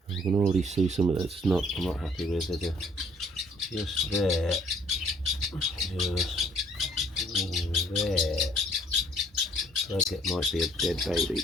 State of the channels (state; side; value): normal; both; correlation 0.60